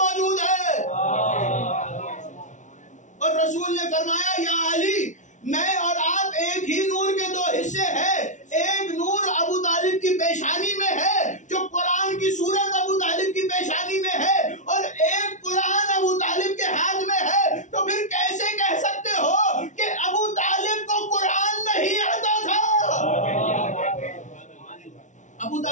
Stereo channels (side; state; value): right; late; 0.36 ms